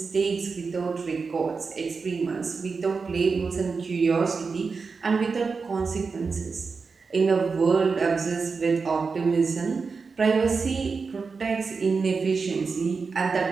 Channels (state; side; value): quieter; left; 4.8 dB